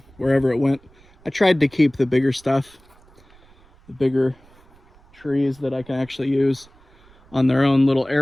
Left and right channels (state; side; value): noise; right; rumble, 29 dB below the sound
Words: wherever it went. I tried to keep the bigger stuff, the bigger trees that I can actually use on their own little